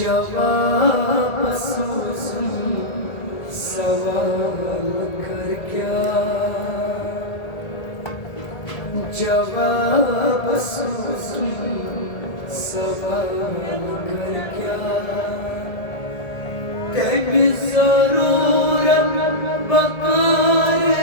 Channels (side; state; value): right; late; 1.8 ms